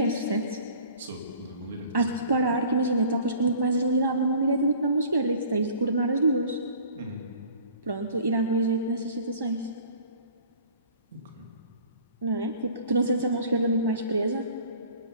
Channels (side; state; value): both; inverted; correlation -0.48